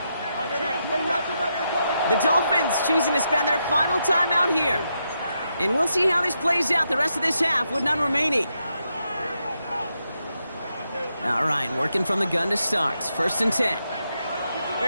The Dolphins choosing to spend their final timeout here. And we'll see how this plays out the rest of this half with none remaining. All right, working from the gun to start. 1st and 10.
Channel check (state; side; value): inverted; both; correlation -0.83